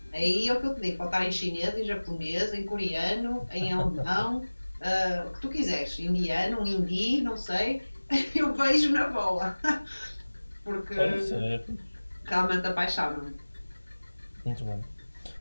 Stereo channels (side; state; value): both; inverted; correlation -1.00